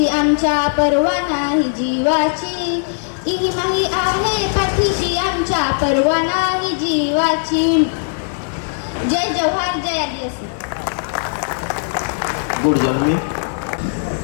आमच्या परवा नाही जीवाची, इमाही आहे पाठीशी आमच्या परवा नाही जीवाची. जय जवाहर, जय आदिवासी. गुड जन्मी.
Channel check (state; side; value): silent; right; digital silence